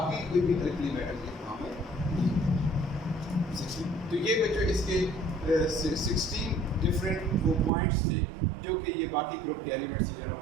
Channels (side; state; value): left; drops out; at 7.7 s